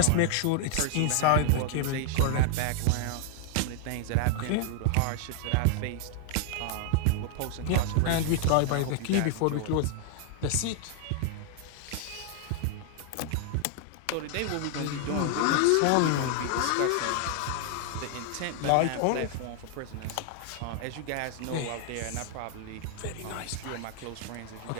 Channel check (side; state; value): both; different; correlation 0.00